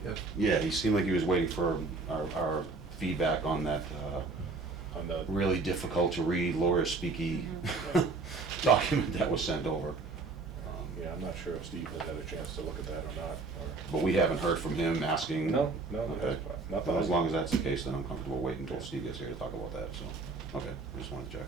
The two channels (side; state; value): left; quieter; 3.8 dB